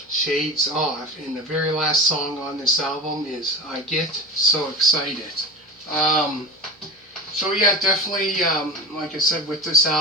Shades Off. And the very last song on this album is I Get So Excited. So yeah, definitely, like I said, with this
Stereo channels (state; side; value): normal; both; correlation 0.31